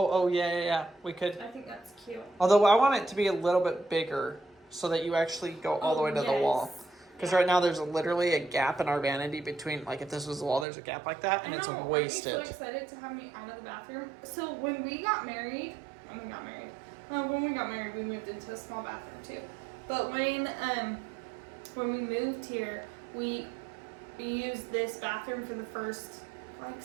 yeah. We could. I think that's cute. Although I want it to be a little bit bigger so that you actually go all the way to the wall. Because right now there's literally a gap in our vanity between, like if this was the wall, there's a gap like that, and it's wasted. I'm so excited to have me out of the bathroom. So when we got married, we moved into a small bathroom too. But when we moved here, we used this bathroom for the first like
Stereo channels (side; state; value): left; drops out; at 10.7 s